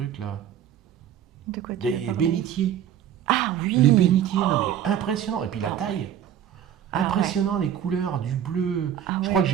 là. De quoi tu veux Des parler? bénitiers. Ah oui. Les bénitiers, non, mais impressionnant. Et puis la taille. Ah Impressionnant, les couleurs, du bleu. Ah Je ouais. crois que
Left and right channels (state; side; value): quieter; left; 10.1 dB